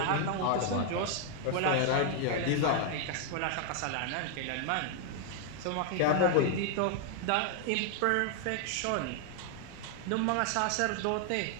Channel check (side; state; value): both; different; correlation 0.00